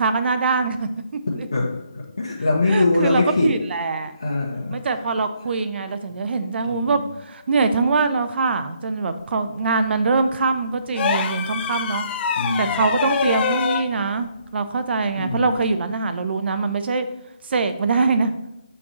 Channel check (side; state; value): both; inverted; correlation -0.69